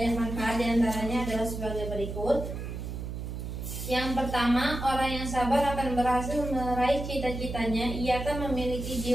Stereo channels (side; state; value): right; noise; hum, 6 dB below the sound